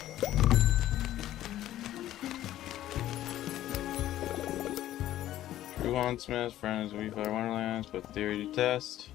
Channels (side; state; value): right; quieter; 13.4 dB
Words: True Wandsmith, friends of Weefly Wonderlands, put theory to test.